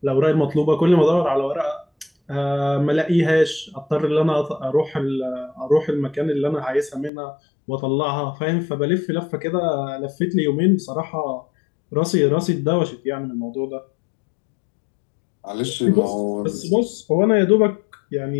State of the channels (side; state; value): right; drops out; at 7.1 s